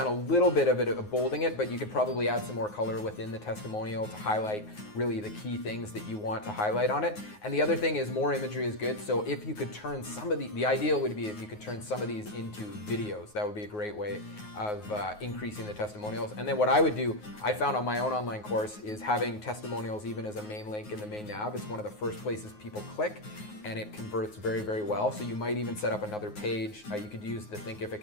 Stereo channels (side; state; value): right; late; 9.5 ms